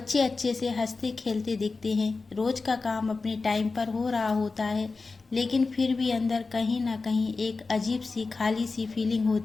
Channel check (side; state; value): right; quieter; 4.0 dB